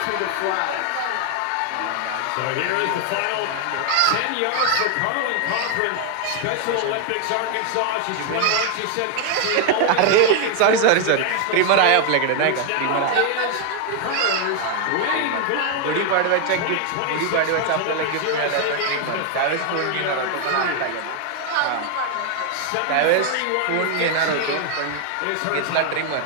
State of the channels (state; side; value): different; both; correlation 0.00